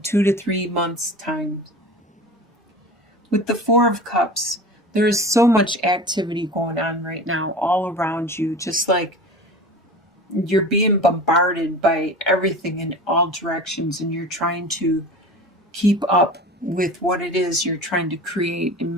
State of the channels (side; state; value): both; normal; correlation 0.35